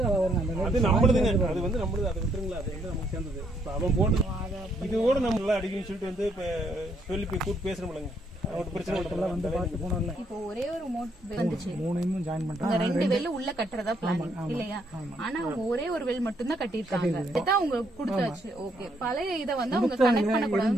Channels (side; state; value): both; normal; correlation 0.72